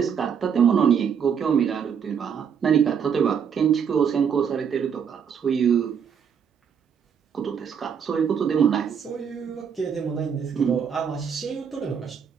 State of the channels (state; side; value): quieter; left; 7.3 dB